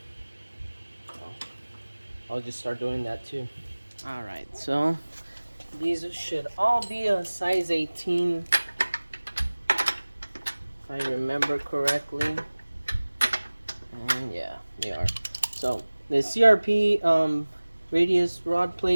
So I'll just start doing that too. Alright, so these should all be a size 18, if I remember correctly. And yeah, they are. So the CRP radius rod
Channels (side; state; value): both; inverted; correlation -1.00